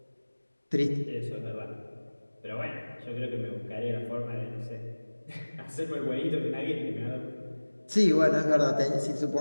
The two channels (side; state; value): both; inverted; correlation -1.00